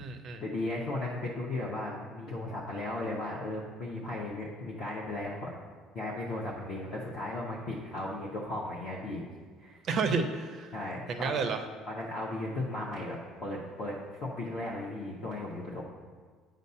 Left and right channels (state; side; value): normal; both; correlation 0.59